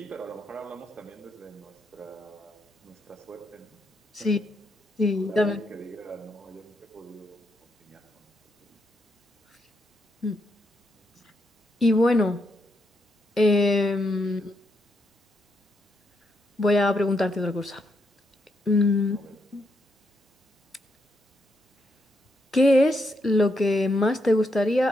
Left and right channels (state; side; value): normal; both; correlation 0.80